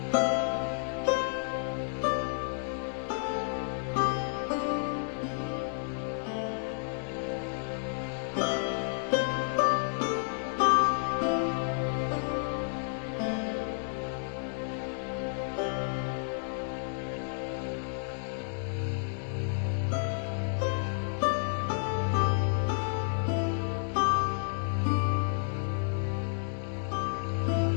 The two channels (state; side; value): silent; right; digital silence